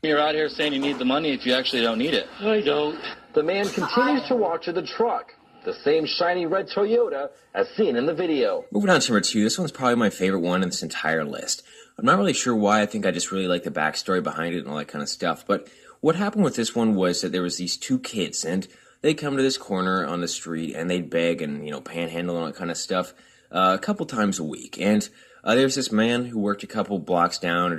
You're out here saying you need the money if you actually don't need it. I don't. The man continues to walk to the truck. The same shiny red Toyota as seen in the video. Moving on to number 2, this one's probably my favorite one in this entire list. I'm not really sure why. I think I just really like the backstory behind it and all that kind of stuff. But what happened with this one was that there was these 2 kids, and they'd come to this corner on the street, and they'd beg and, panhandle and all that kind of stuff a couple times a week. And there's this man who worked a couple blocks down or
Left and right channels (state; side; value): identical; both; correlation 1.00